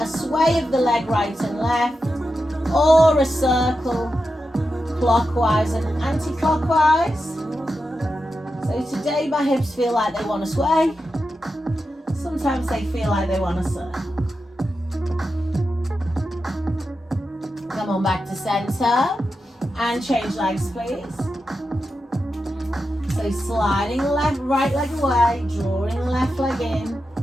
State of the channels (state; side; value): normal; both; correlation 0.89